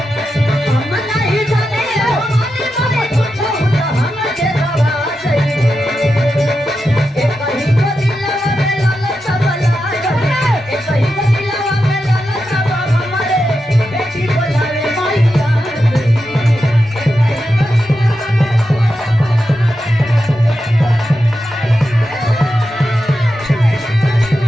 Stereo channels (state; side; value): normal; both; correlation 0.89